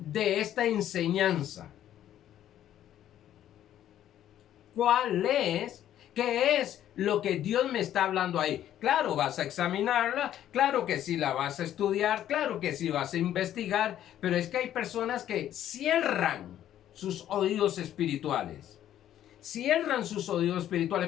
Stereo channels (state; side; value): quieter; right; 11.5 dB